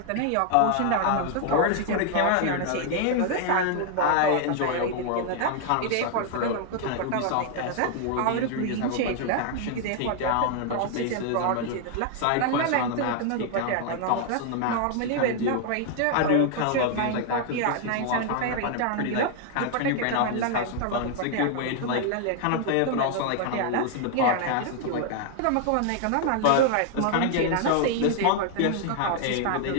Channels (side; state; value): both; different; correlation 0.00